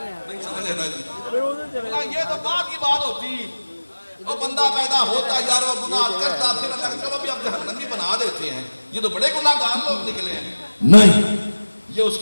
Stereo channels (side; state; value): both; inverted; correlation -1.00